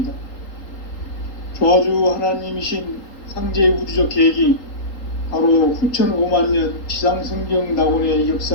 조화주 하나님이신 상제의 우주적 계획이 바로 후천 5만년 지상성경 낙원의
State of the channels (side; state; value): right; late; 3.8 ms